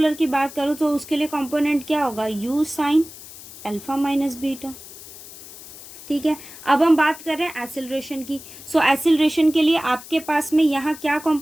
की बात करूँ तो उसके लिए कंपोनेंट क्या होगा, u sine alpha minus beta, ठीक है। अब हम बात कर रहे हैं एक्सेलरेशन की। सो एक्सेलरेशन के लिए आपके पास में यहाँ क्या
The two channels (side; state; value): left; noise; hiss, 16 dB below the sound